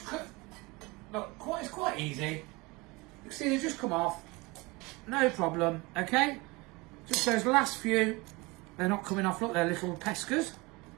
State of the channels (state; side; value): quieter; left; 24.6 dB